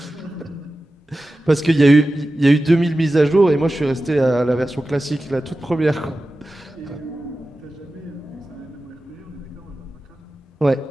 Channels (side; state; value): both; normal; correlation 0.94